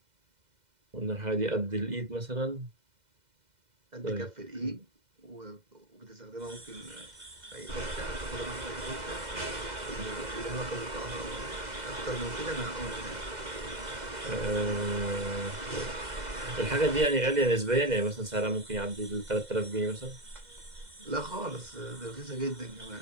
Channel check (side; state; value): left; late; 2.0 ms